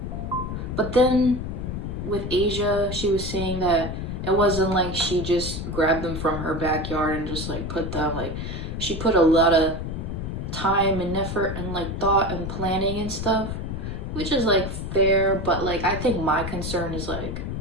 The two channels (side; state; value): left; noise; rumble, 5 dB below the sound